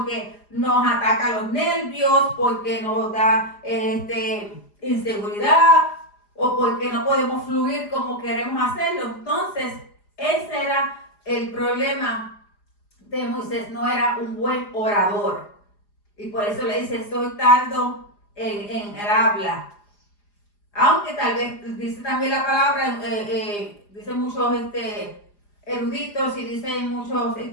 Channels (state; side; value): late; right; 4.9 ms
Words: nos ataca los nervios, porque nos da inseguridad o porque no podemos fluir como queremos hacerlo. Entonces, ese era el problema de Moisés, no era un buen orador. Y por eso le dice, estoy tardo en el habla. Aunque tal vez dice también la palabra, dicen muchos eruditos y dicen muchos